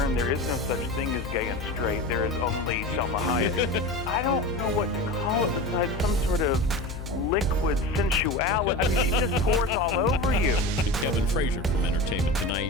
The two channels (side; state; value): left; noise; hum, 9 dB below the sound